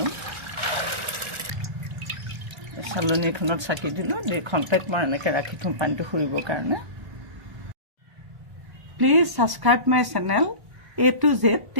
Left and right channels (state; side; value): late; left; 1.1 ms